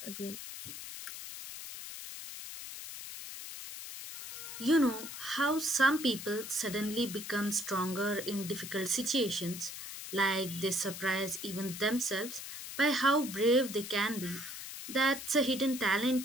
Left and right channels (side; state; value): left; noise; hiss, 9 dB below the sound